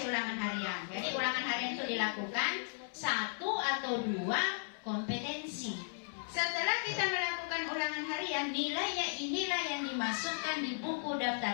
ulangan harian. Jadi ulangan harian itu dilakukan 1 atau 2 kompetensi. Setelah kita melakukan ulangan harian, nilainya inilah yang dimasukkan di buku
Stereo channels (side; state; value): right; silent; 54 dB below the other